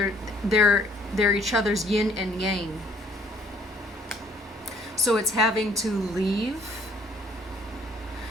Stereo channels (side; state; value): both; normal; correlation 0.61